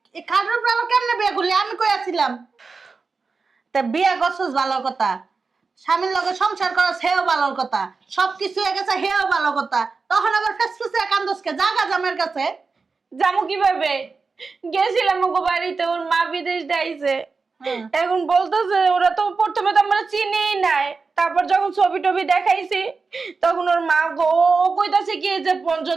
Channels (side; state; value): left; quieter; 4.5 dB